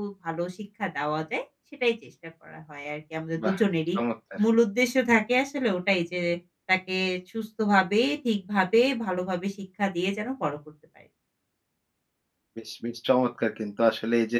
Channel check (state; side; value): identical; both; correlation 1.00